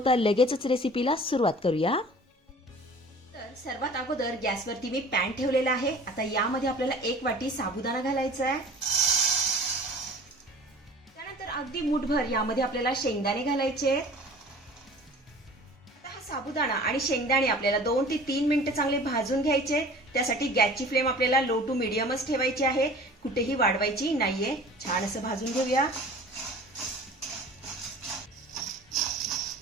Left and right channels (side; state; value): both; normal; correlation 0.44